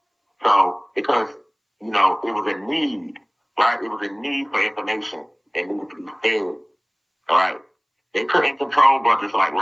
So because it was a need, right? It was a need for information that needed to be fed. All right. They couldn't control brothers like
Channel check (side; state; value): both; identical; correlation 1.00